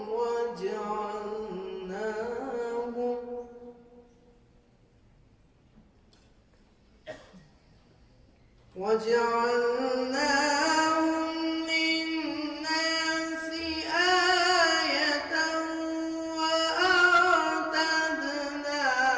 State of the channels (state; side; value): identical; both; correlation 1.00